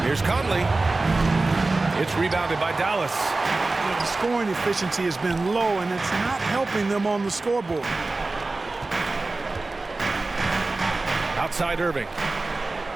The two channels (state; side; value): quieter; left; 3.3 dB